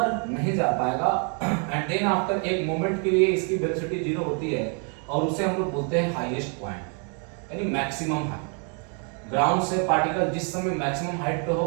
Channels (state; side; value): quieter; left; 39.4 dB